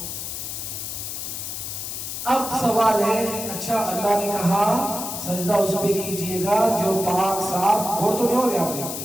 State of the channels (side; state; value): left; noise; hiss, 6 dB below the sound